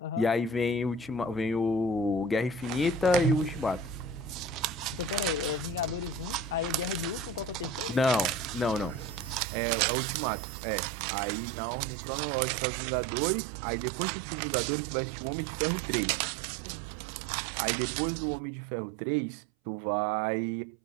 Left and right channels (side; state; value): left; drops out; at 9.4 s